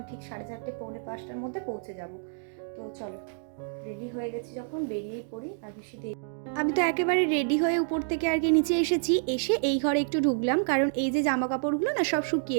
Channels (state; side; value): silent; left; digital silence